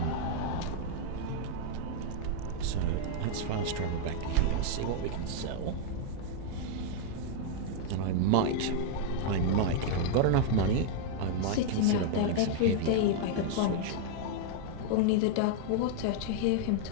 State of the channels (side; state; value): both; different; correlation -0.01